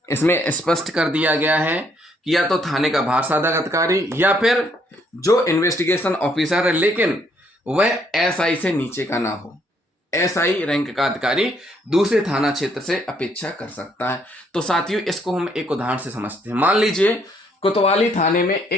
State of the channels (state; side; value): normal; both; correlation 0.69